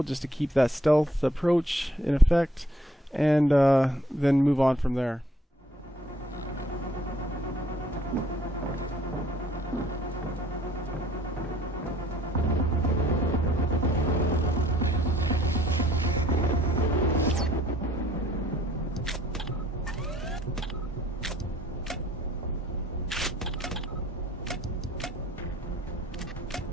just to keep that stealth approach in effect, and then move on from there.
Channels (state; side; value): normal; both; correlation 0.61